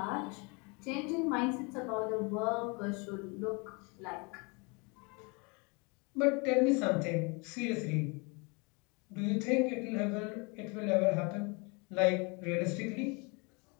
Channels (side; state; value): right; quieter; 30.6 dB